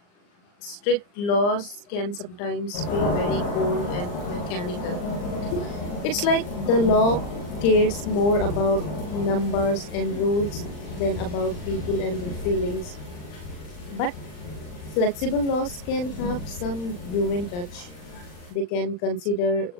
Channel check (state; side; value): late; right; 39 ms